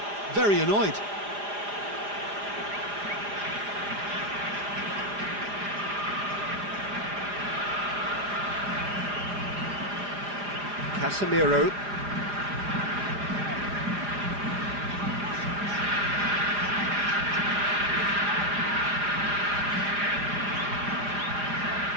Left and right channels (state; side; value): late; left; 4.9 ms